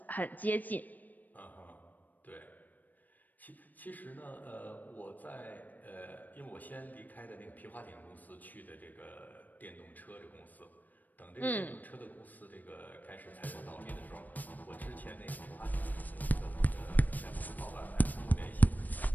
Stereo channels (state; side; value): late; right; 0.084 ms